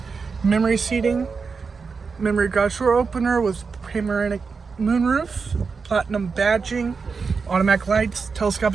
memory seating, memory garage door opener with panoramic moonroof, platinum badging, automatic lights,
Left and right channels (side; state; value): left; quieter; 5.1 dB